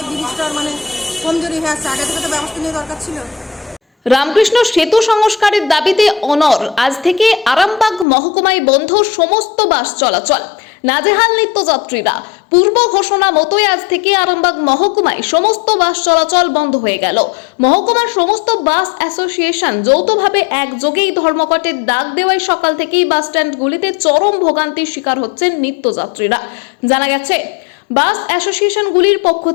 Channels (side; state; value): right; drops out; at 8.1 s